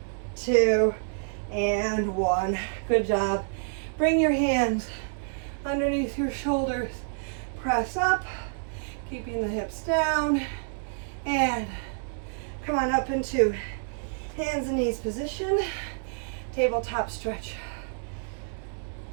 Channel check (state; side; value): silent; left; 59 dB below the other